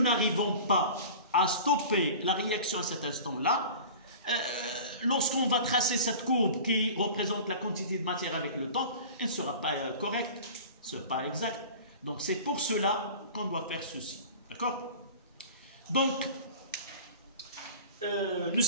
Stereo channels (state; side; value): inverted; both; correlation -0.38